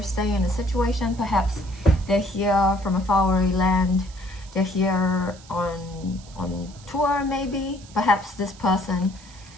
staying in a situation. Perhaps they're here from a faraway land. They're here on tour, maybe. Perhaps this person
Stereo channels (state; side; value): noise; right; hiss, 22 dB below the sound